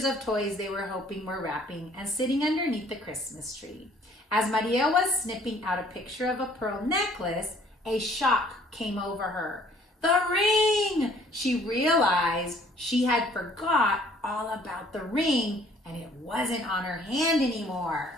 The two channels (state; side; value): normal; both; correlation 0.58